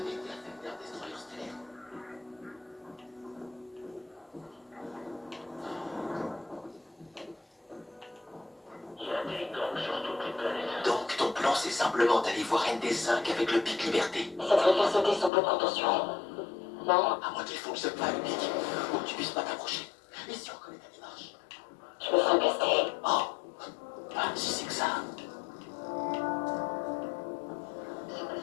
été affecté d'un destroyer stellaire. Il y a des gangs sur toutes les planètes. Donc ton plan c'est simplement d'aller voir ND5 avec le pic liberté. Ça devrait faire sauter son pot de contention. Non? À moins qu'il fonctionne pas le pic, ou que tu puisses pas t'approcher. Et si on reconnaît ta démarche? Je me ferai caster. Oh, ah, si c'est que ça.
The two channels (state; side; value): drops out; right; at 15.3 s